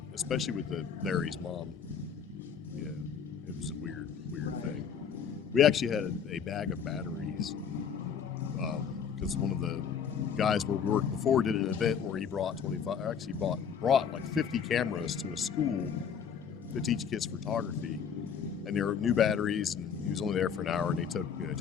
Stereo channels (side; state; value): right; quieter; 7.2 dB